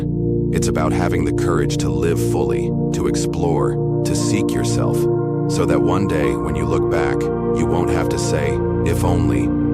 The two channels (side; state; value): both; identical; correlation 1.00